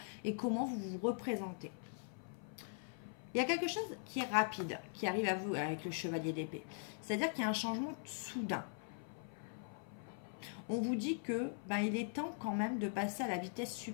et comment vous vous représentez. Il y a quelque chose qui est rapide, qui arrive à vous avec le chevalier d'épée. C'est-à-dire qu'il y a un changement soudain. On vous dit que il est temps quand même de passer à la vitesse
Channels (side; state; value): right; silent; 50 dB below the other